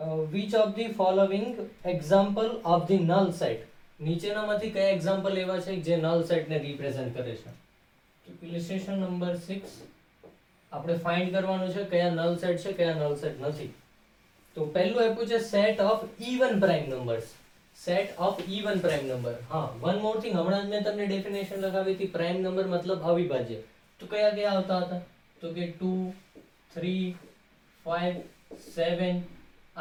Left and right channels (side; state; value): both; identical; correlation 1.00